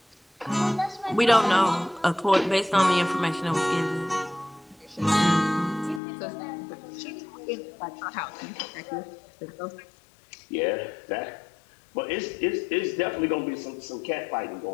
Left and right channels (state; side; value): drops out; right; at 6.0 s